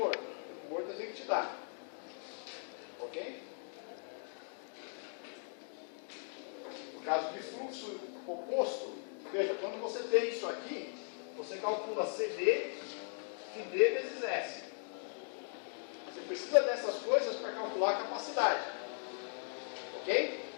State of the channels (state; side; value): silent; right; 52 dB below the other